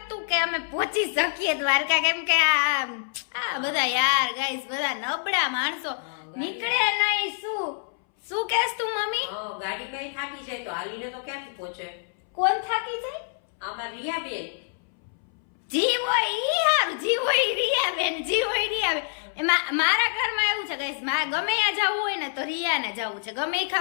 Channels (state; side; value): silent; right; 61 dB below the other